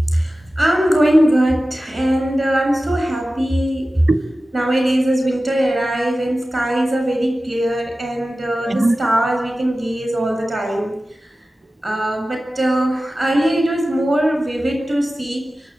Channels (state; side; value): normal; both; correlation 0.95